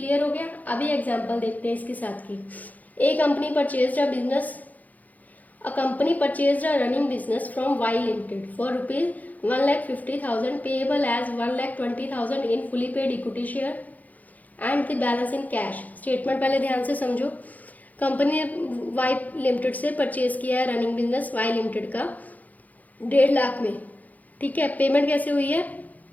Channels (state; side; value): late; right; 0.079 ms